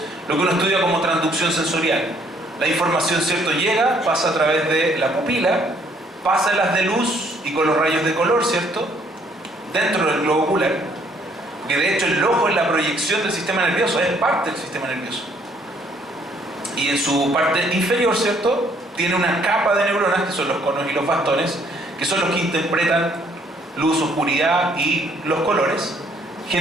lo que uno estudia como transducción sensorial. La información, ¿cierto?, llega, pasa a través de la pupila, pasa en las de luz y con los rayos de color, ¿cierto?, dentro del globo ocular. Que de hecho el ojo es la proyección del sistema nervioso, es parte del sistema nervioso. Y en su parte inferior, ¿cierto?, tiene una capa de neuronas, que son los conos y los bastones, que son los que interpretan luz, oscuridad y los colores.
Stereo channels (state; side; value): normal; both; correlation 0.65